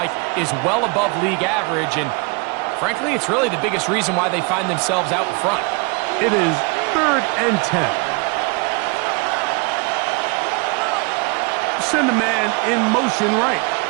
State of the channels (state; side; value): quieter; left; 30.5 dB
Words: is well above league average, and frankly, it's really the biggest reason why they find themselves out in front. It is 3rd and 10. Send a man in motion right.